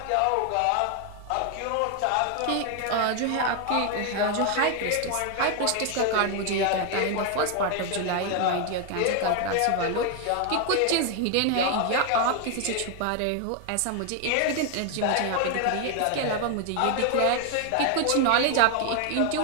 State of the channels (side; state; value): both; different; correlation 0.00